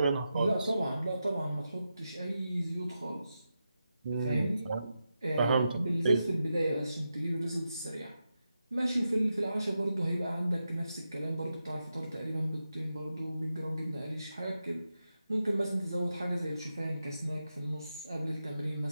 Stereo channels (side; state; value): both; inverted; correlation -0.89